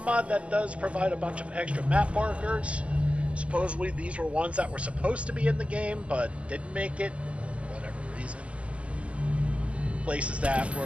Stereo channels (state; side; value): late; left; 0.062 ms